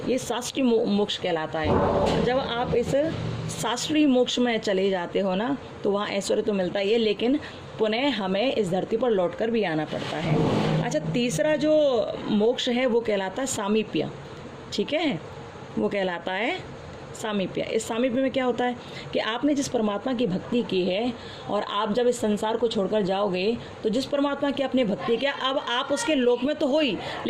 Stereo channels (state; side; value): identical; both; correlation 1.00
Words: ये शास्त्रीय मोक्ष कहलाता है। जब आप इस शास्त्रीय मोक्ष में चले जाते हो ना, तो वहाँ ऐश्वर्य तो मिलता ही है, लेकिन पुनः हमें इस धरती पर लौटकर भी आना पड़ता है। अच्छा, तीसरा जो मोक्ष है वो कहलाता है सामीप्य। ठीक है, वो कहलाता है सामीप्य। इस सामीप्य में क्या होता है कि आपने जिस परमात्मा की भक्ति की है, और आप जब इस संसार को छोड़कर जाओगे, तो जिस परमात्मा की आपने भक्ति किया, अब आप उसके लोक में तो हो ही,